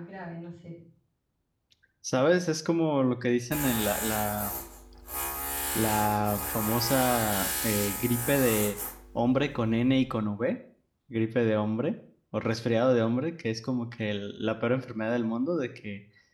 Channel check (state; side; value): identical; both; correlation 1.00